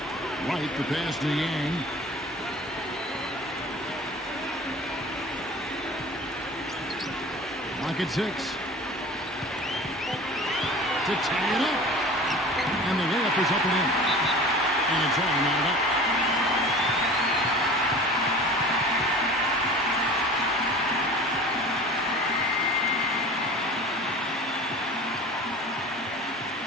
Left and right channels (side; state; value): both; normal; correlation 0.40